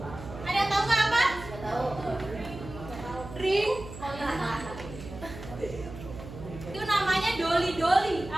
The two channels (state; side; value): noise; right; hum, 13 dB below the sound